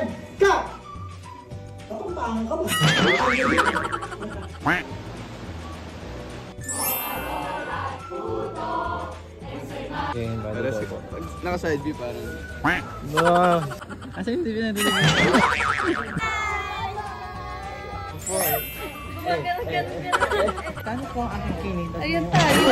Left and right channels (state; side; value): identical; both; correlation 1.00